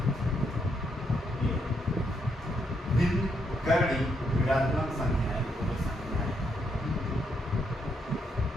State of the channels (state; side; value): normal; both; correlation 0.77